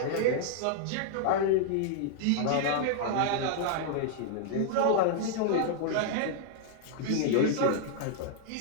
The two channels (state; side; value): different; both; correlation -0.01